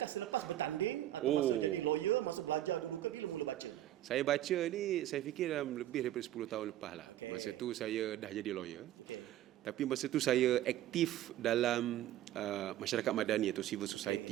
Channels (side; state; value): left; quieter; 13.2 dB